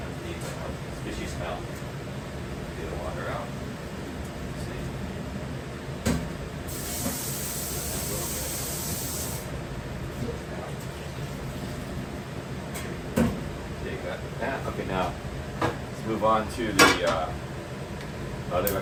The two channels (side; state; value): both; identical; correlation 1.00